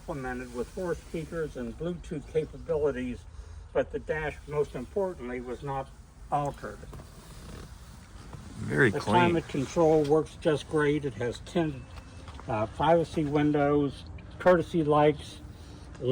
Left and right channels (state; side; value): identical; both; correlation 1.00